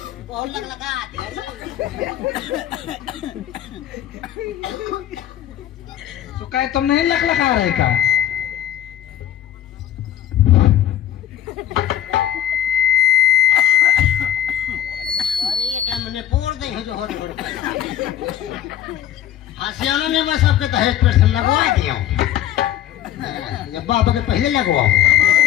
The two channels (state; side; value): quieter; right; 11.4 dB